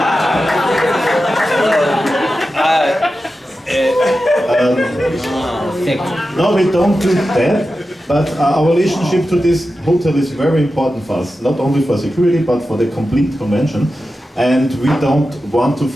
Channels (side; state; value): both; normal; correlation 0.92